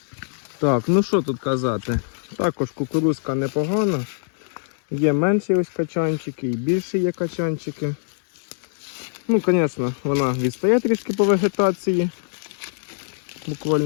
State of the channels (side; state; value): right; silent; 60 dB below the other